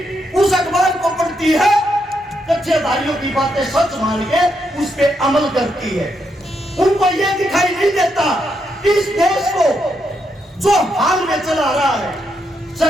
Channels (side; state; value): both; normal; correlation 0.80